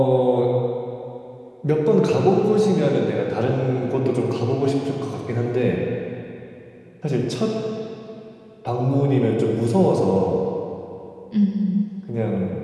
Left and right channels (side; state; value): both; identical; correlation 1.00